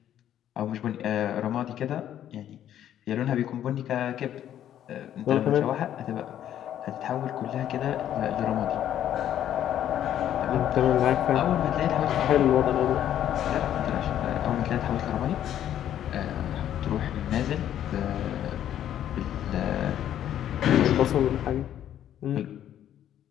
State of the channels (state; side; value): quieter; right; 10.9 dB